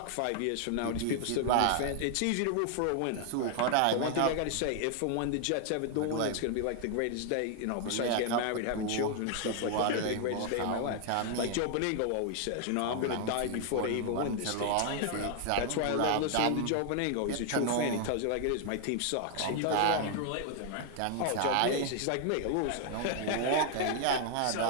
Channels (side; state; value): both; different; correlation 0.00